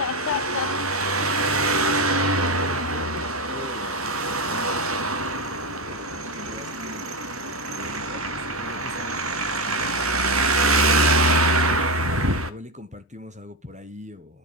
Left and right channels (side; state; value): both; normal; correlation 0.12